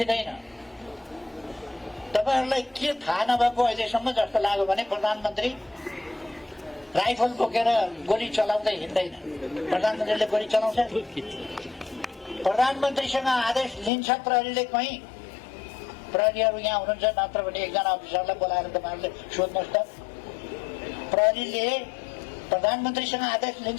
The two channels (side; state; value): right; drops out; at 13.9 s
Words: तपाईहरुलाई के थाहा नभएको अहिलेसम्म जस्तो लाग्यो भने प्रधानमन्त्री राइफल बोकेर गोली चलाउँदै हिँड्दैन। प्रधानमन्त्रीले गोली चलाउँछ। प्रधानमन्त्रीसँग आदेश लिन्छ प्रहरीले। कहीँ प्रहरीहरू यहाँ हुनुहुन्छ, नत्र भने एकजना अफिसरलाई बोलाएर तपाईहरुले सोध्नुहोस् त, प्रहरीले प्रधानमन्त्रीसँग आदेश